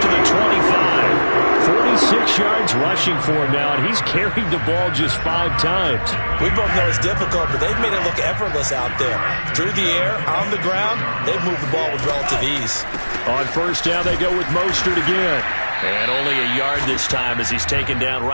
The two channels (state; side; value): inverted; both; correlation -1.00